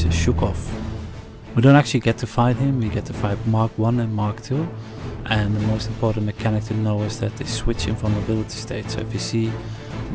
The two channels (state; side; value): identical; both; correlation 1.00